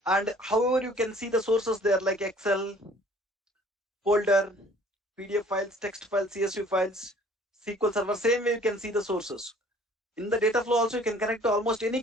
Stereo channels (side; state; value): both; normal; correlation 0.54